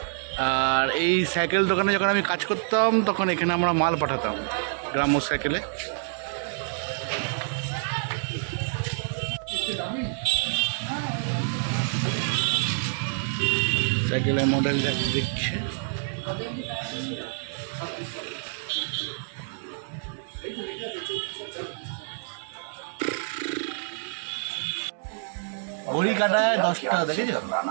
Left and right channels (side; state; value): left; silent; 60 dB below the other